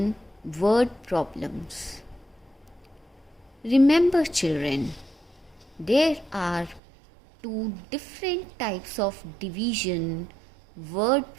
word problems. Remember children, there are two different types of division word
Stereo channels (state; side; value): drops out; left; at 6.8 s